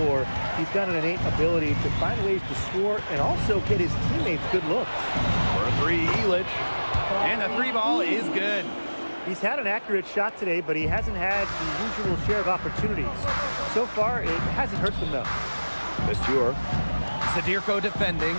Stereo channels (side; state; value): both; inverted; correlation -1.00